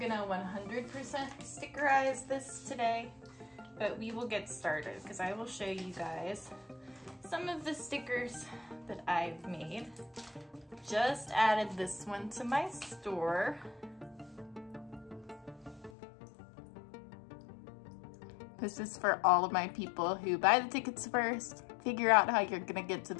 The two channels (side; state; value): right; drops out; at 15.9 s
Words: 100% stickerize this today, but we will get started because I will show you guys some of the stickers that I've made. Just added this one to my store. This is for all of my people who buy the tickets first, figure out how you're gonna get to